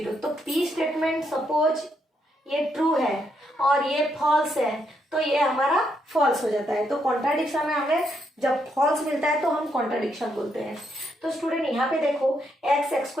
तो p स्टेटमेंट सपोज ये ट्रू है और ये फॉल्स है तो ये हमारा फॉल्स हो जाता है। तो कॉन्ट्राडिक्शन में हमें जब फॉल्स मिलता है तो हम कॉन्ट्राडिक्शन बोलते हैं। तो स्टूडेंट यहाँ पे देखो x² +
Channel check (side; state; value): both; normal; correlation 0.77